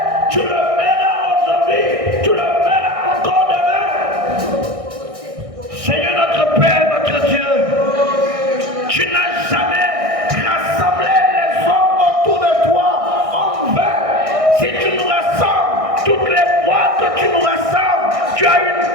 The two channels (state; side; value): late; left; 1.6 ms